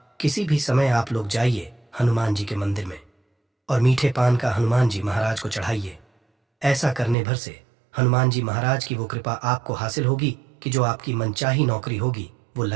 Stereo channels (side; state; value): left; drops out; at 7.2 s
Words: किसी भी समय आप लोग जाइए हनुमान जी के मंदिर में और मीठे पान का हनुमान जी महाराज को चढ़ाइए। ऐसा करने भर से हनुमान जी महाराज की वो कृपा आपको हासिल होगी कि जो आपकी मनचाही नौकरी होगी वो